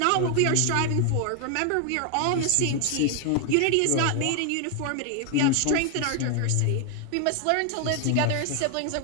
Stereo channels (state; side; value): different; both; correlation 0.00